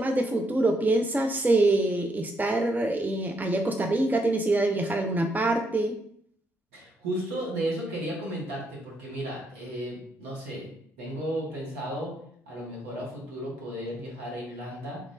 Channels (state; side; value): normal; both; correlation 0.76